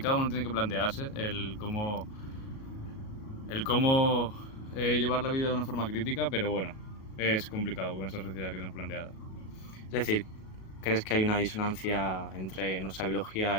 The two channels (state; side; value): late; right; 37 ms